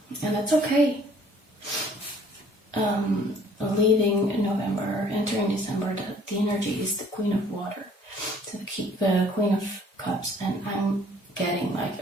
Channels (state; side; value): normal; both; correlation 0.57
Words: and that's okay. Leaving November, entering December, the energy is the Queen of Water, so the Queen of Cups, and I'm getting